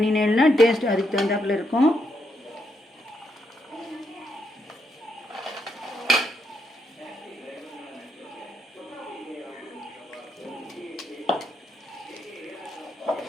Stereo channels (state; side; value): normal; both; correlation 0.78